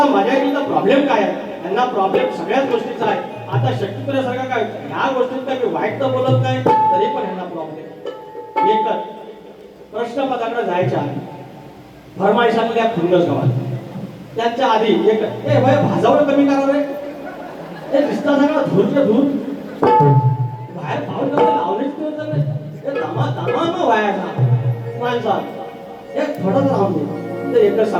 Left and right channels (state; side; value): identical; both; correlation 1.00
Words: मजा येईल तर प्रॉब्लेम काय आहे यांना प्रॉब्लेम सगळ्याच गोष्टीचा आहे. आता शक्तीपुऱ्यासारखा काय ह्या गोष्टीत काय मी वाईट तर बोलत नाही तरी पण यांना प्रॉब्लेम एकच प्रश्नपत्राकडे जायच्या फरमाईशांमध्ये खुंडस गावात त्यांच्या आधी एक ए वय भाजावं कमी करा रे हे दिसता सगळा धूरच्या धूर बाहेर पाहून लावणीच नाही दमा दमा न व्हायचा माणसात एक थोडंच राहून दे तर एकच